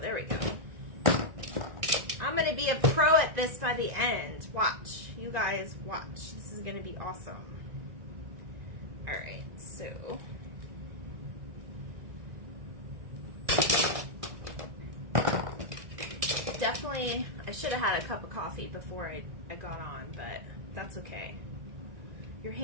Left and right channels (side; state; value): left; late; 1.6 ms